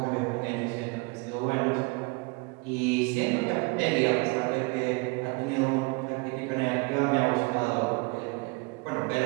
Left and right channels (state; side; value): quieter; left; 28.4 dB